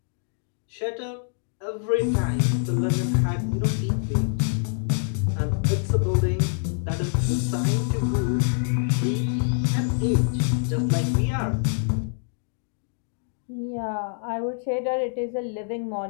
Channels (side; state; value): right; silent; digital silence